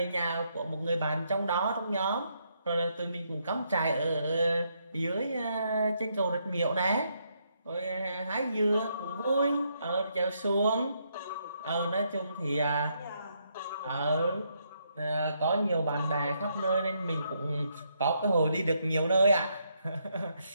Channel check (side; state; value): both; inverted; correlation -0.76